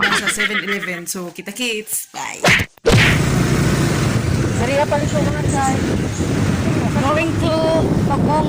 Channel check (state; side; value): identical; both; correlation 1.00